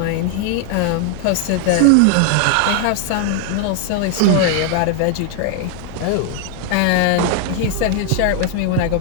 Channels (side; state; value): both; different; correlation 0.00